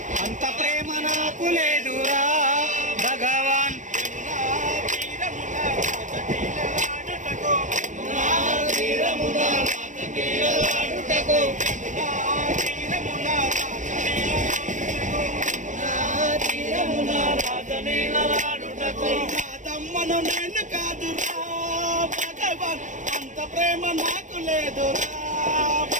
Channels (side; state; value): left; late; 0.36 ms